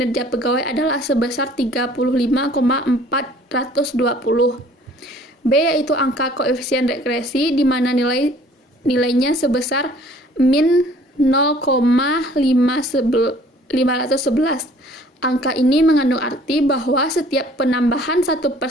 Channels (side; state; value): both; normal; correlation 0.55